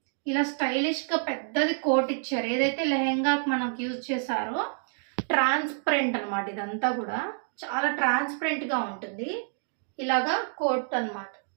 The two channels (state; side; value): silent; left; 59 dB below the other